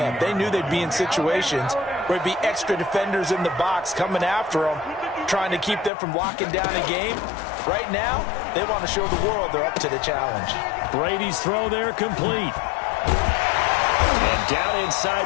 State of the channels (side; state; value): right; drops out; at 5.9 s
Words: They knew they'd be in situations where it'd be extra defenders in the box coming after them, trying to keep them from locking down a game. Right now, they want to show the world they're up to the challenge. Brady's throw there complete. And down inside